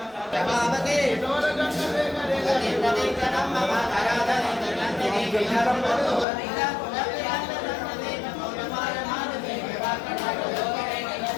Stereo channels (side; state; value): right; drops out; at 6.2 s